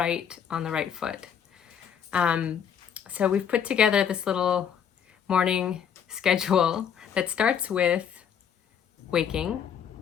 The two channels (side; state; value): right; quieter; 8.1 dB